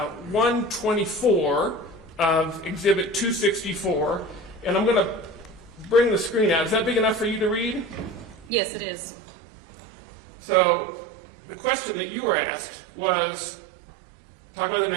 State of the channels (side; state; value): left; drops out; at 8.5 s